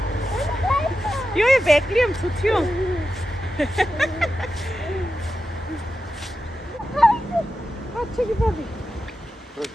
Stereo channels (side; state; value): both; normal; correlation 0.90